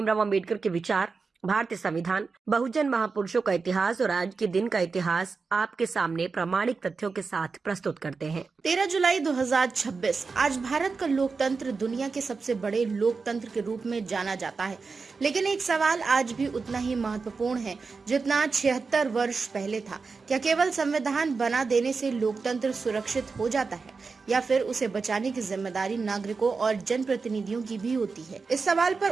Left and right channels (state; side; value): quieter; left; 4.6 dB